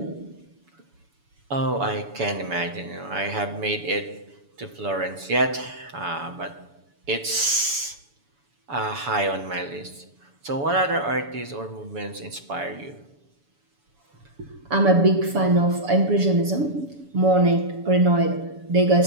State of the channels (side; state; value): left; late; 7.0 ms